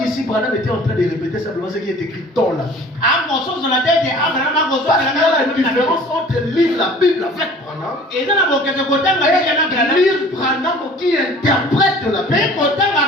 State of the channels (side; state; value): both; normal; correlation 0.47